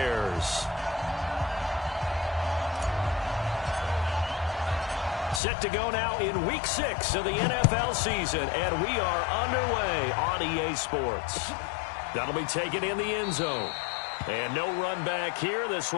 Set to go now in Week 6 of the NFL season, and we are underway on EA Sports. That'll be taken in the end zone. And no run back here. This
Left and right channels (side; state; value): right; drops out; at 5.4 s